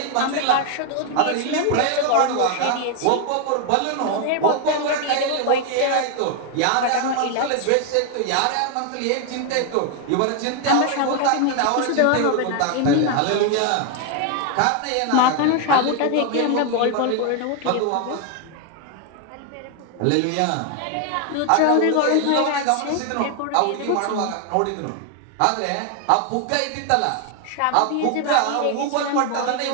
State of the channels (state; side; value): different; both; correlation 0.01